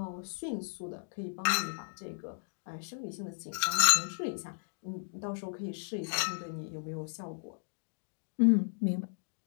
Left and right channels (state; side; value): silent; right; digital silence